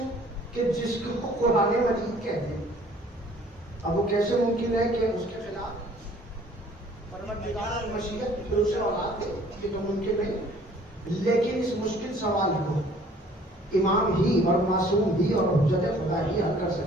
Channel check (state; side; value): normal; both; correlation 0.55